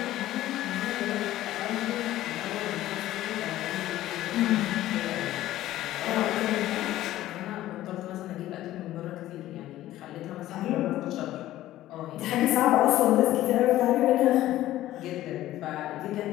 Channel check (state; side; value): quieter; right; 14.5 dB